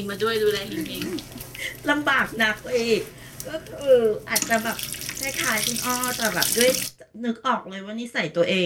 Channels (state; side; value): identical; both; correlation 1.00